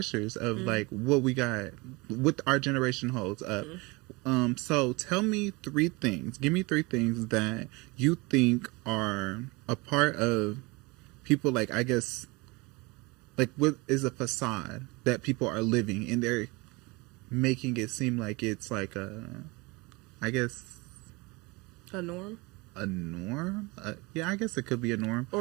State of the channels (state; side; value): quieter; left; 25.5 dB